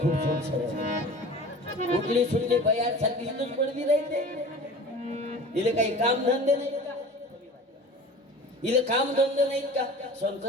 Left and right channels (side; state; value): both; normal; correlation 0.39